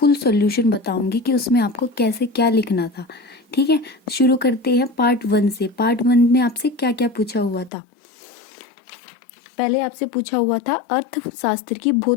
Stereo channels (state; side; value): drops out; right; at 7.7 s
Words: सॉल्यूशन बताऊंगी कि उसमें आपको कैसे क्या लिखना था। ठीक है, शुरू करते हैं पार्ट 1 से। पार्ट 1 में आपसे क्या क्या पूछा हुआ था। पहले आपसे पूछा हुआ था अर्थशास्त्र की